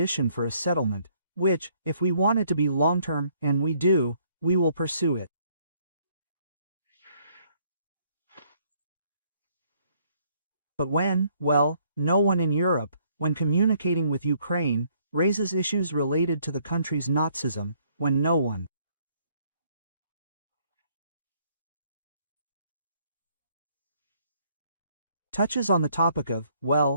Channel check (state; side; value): inverted; both; correlation -0.66